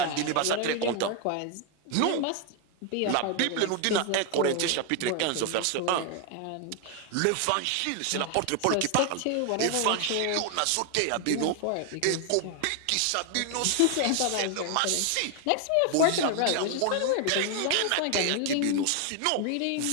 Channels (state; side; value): different; both; correlation 0.00